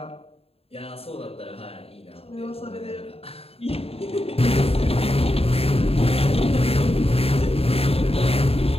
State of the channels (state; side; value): late; right; 0.28 ms